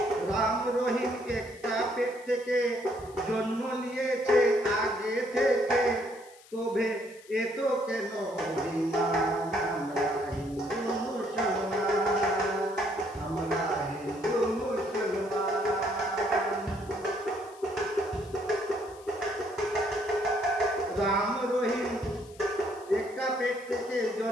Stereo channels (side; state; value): left; noise; hiss, 24 dB below the sound